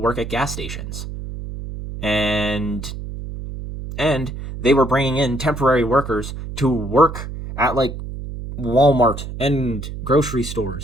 at gas stations. And they were bringing in temporary workers to work at like Walmart and grocery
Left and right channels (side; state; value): right; noise; hum, 8 dB below the sound